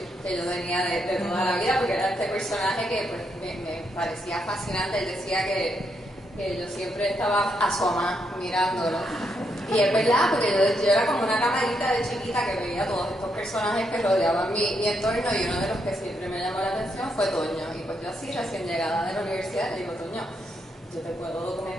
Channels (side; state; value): both; normal; correlation 0.79